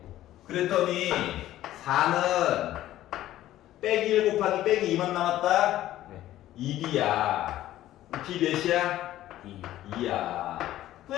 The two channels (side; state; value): right; quieter; 14.0 dB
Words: 그랬더니, 4는 빼기 1 곱하기 빼기 2만 남았다? 네. 2B야. B 몇이야? 2. 2야.